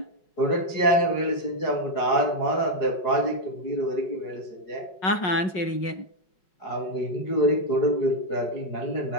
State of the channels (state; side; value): late; right; 5.4 ms